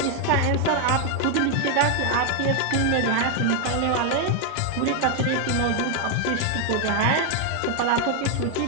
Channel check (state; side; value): different; both; correlation 0.00